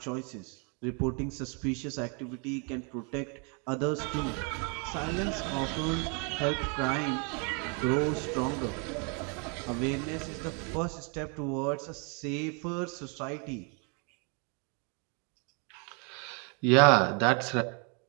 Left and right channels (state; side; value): quieter; left; 35.9 dB